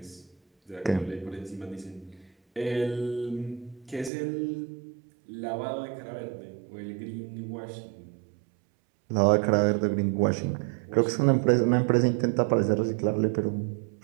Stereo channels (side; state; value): left; drops out; at 4.1 s